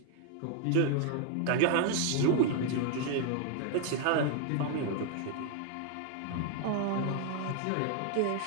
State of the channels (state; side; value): different; both; correlation 0.00